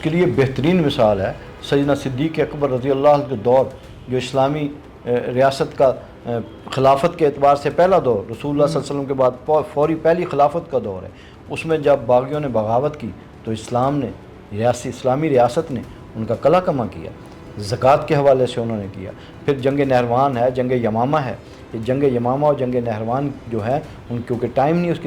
کے لیے بہترین مثال ہے سیدنا صدیق اکبر رضی اللہ عنہ کے دور، جو اسلامی ریاست کا خلافت کے اعتبار سے پہلا دور، رسول اللہ صلی اللہ علیہ وسلم کے بعد فوری پہلی خلافت کا دور ہے۔ اس میں جب باغیوں نے بغاوت کی تو اسلام نے اسلامی ریاست نے ان کا قلع کما کیا، زکوٰۃ کے حوالے سے انہوں نے کیا۔ پھر جنگ نہروان ہے، جنگ یمامہ ہے، یہ جنگ یمامہ اور جنگ نہروان جو ہے ان کیونکہ ٹائم نہیں اس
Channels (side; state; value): both; identical; correlation 1.00